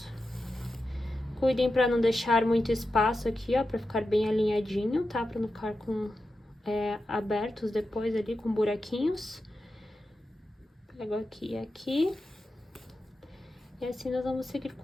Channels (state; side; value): normal; both; correlation 0.90